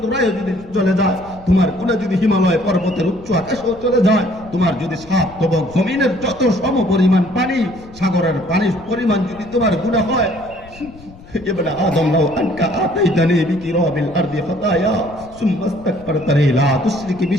তোরায় যদি চলে যায়, তোমার গুনাহ যদি হিমালয় পর্বতের উচ্চ আকাশেও চলে যায়, তোমার যদি 7 তবক জমিনের যত সম পরিমাণ পানি, সাগরের পানির পরিমাণ যদি তোমার গুনাহ হয়, ইবনে আদম লাউ আনকা আতাইতানি বিকিরাবিল আরদি খাতায়া সুম্মা ইস্তাগফারতানি লা তুশরিক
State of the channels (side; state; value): left; noise; rumble, 21 dB below the sound